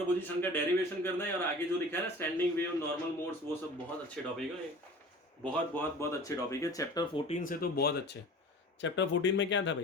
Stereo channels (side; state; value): both; normal; correlation 0.41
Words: का डेरिवेशन करना है, और आगे जो लिखा है ना स्टैंडिंग वेव, नॉर्मल मोड्स, वो सब बहुत अच्छे टॉपिक है, बहुत बहुत बहुत अच्छे टॉपिक है। चैप्टर 14 से तो बहुत अच्छे। चैप्टर 14 में क्या था